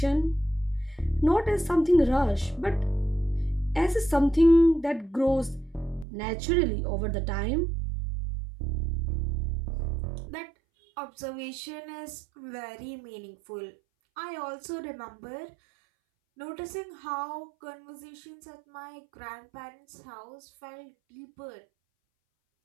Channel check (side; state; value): left; drops out; at 6.1 s